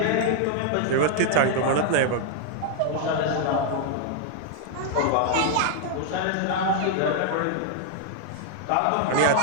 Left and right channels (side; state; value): both; different; correlation 0.00